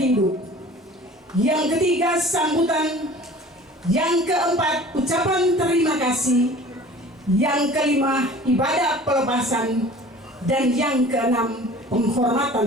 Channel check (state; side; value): normal; both; correlation 0.44